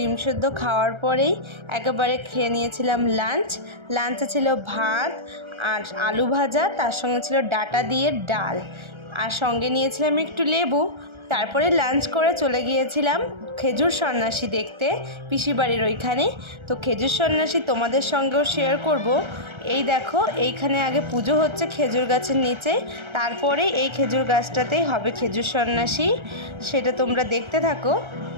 সেদ্ধ খাওয়ার পরেই একেবারে খেয়ে নিয়েছিলাম লাঞ্চে ছিল ভাত আর আলু ভাজা, তার সঙ্গে ছিল ডাঁটা দিয়ে ডাল, আর সঙ্গে নিয়েছিলাম একটু লেবু। তারপরে লাঞ্চ করে চলে গিয়েছিলাম খেজুর সন্ন্যাসী দেখতে, পিসির বাড়ির ওইখানে। তো খেজুর সন্ন্যাসী তোমাদের সঙ্গেও শেয়ার করব। এই দেখো, এইখানে আগে পুজো হচ্ছে খেজুর গাছের নিচে, তারপরে এই খেজুর গাছটাতেই হবে খেজুর সন্ন্যাসী। সেটা তোমরা দেখতে থাকো।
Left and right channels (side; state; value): left; late; 1.3 ms